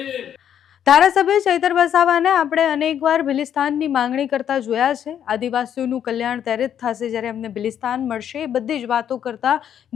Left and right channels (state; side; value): quieter; right; 9.4 dB